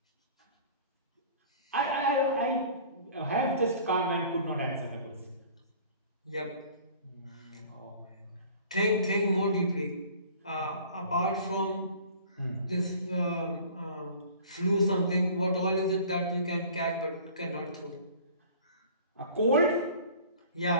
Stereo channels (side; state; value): both; inverted; correlation -0.47